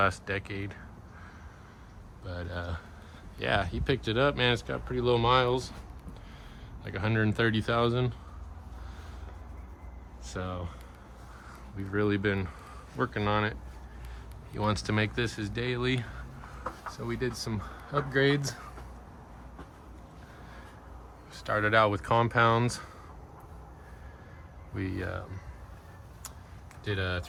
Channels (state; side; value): identical; both; correlation 1.00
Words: decade. But yeah, he picked it up, man. It's got pretty low miles, like 130,000. So we've really been working on it. He wants to make this his daily, so we did some upgrades. Started out with compounds. We did a